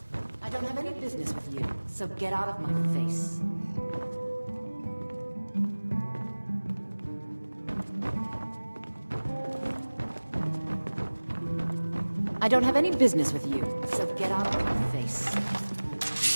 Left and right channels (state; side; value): inverted; both; correlation -1.00